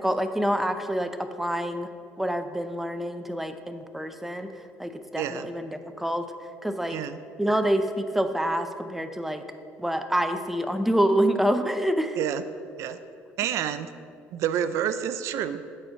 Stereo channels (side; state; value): both; normal; correlation 0.81